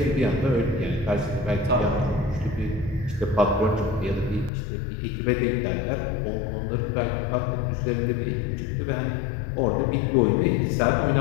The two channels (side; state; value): right; drops out; at 4.5 s